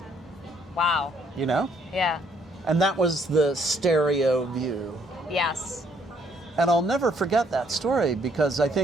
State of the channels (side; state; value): both; normal; correlation 0.66